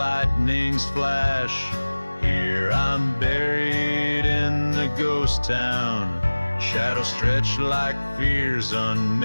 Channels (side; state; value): both; inverted; correlation -1.00